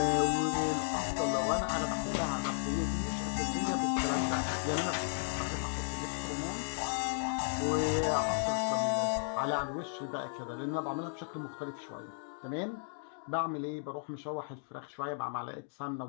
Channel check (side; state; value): right; silent; digital silence